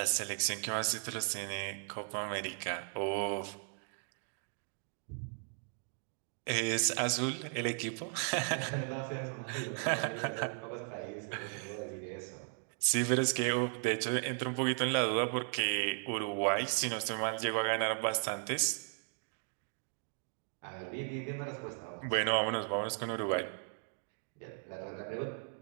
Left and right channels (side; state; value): left; silent; 54 dB below the other